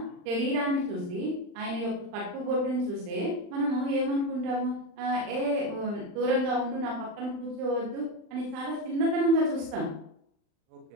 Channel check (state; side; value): late; left; 39 ms